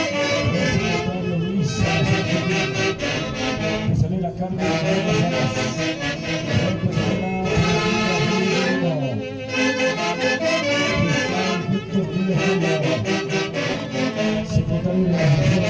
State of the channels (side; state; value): both; identical; correlation 1.00